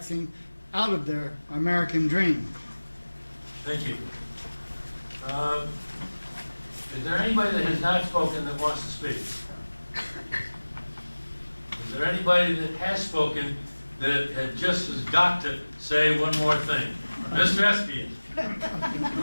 out of their American dream. Thank you. Is there anybody that has not spoken that wants to speak? Is there anybody that has spoken that has got to say one more thing? Mr. Espian,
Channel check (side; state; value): both; inverted; correlation -1.00